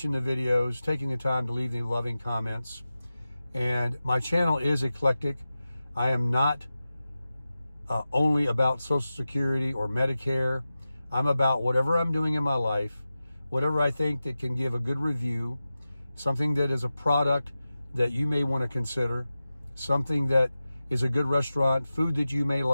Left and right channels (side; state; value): both; inverted; correlation -0.94